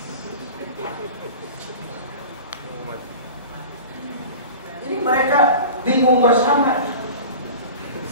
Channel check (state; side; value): inverted; both; correlation -0.36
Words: Jadi mereka bingung bersama.